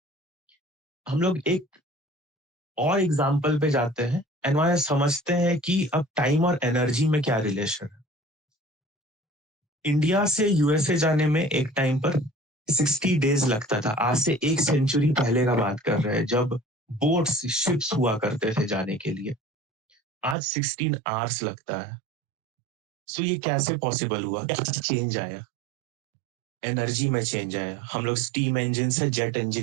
हम लोग एक और एग्जाम्पल पे जाते हैं एंड वहां समझते हैं कि अब टाइम और एनर्जी में क्या रिलेशन है। इंडिया से यूएसए जाने में एक टाइम पर 60 डेज लगता था। आज से एक सेंचुरी पहले का बात कर रहे हैं, जब बोट्स शिप्स हुआ करते थे जाने के लिए। आज 16 आवर्स लगता है। सो ये कैसे पॉसिबल हुआ? क्या चेंज आया? एनर्जी में चेंज आया। हम लोग स्टीम इंजन से जेट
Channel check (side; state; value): left; drops out; at 20.4 s